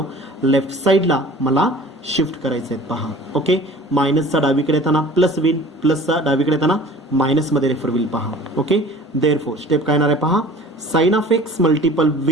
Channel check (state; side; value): normal; both; correlation 0.44